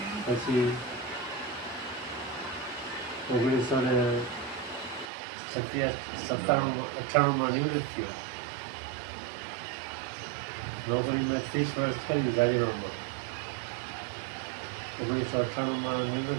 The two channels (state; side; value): drops out; left; at 5.1 s